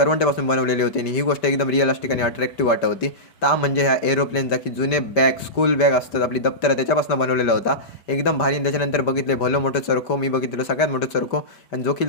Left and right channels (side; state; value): right; late; 5.1 ms